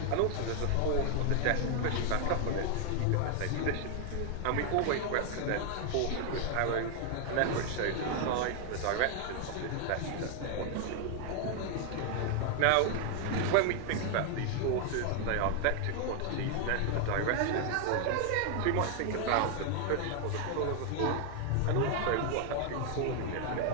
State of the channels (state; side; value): different; both; correlation 0.00